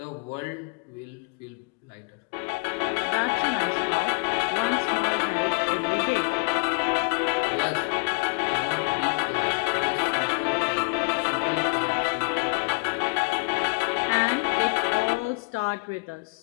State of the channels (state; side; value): quieter; right; 31.5 dB